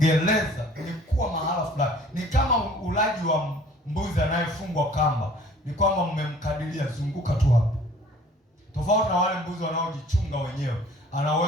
ni kuwa mahala fulani. Ni kama ulaji wa mbuzi anayefungwa kamba. Ni kwamba mmemkadiria, zunguka tu hapo. Tofauti na wale mbuzi wanaojichunga wenyewe. Ana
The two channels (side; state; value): both; normal; correlation 0.52